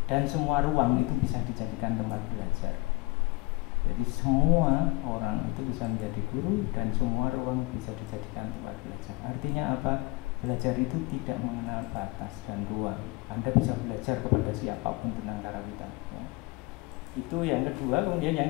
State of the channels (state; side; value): quieter; right; 23.8 dB